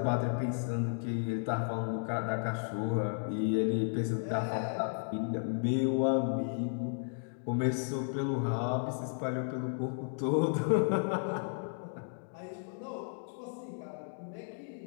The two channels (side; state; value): right; silent; digital silence